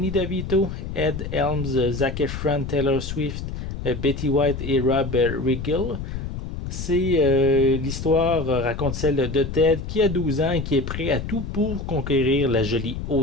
DeVito, Ed Helms, Zac Efron, Taylor Swift, Betty White et Rob Riggle. L'histoire raconte celle de Ted qui a 12 ans et qui est prêt à tout pour conquérir la jolie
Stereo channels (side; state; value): left; noise; rumble, 6 dB below the sound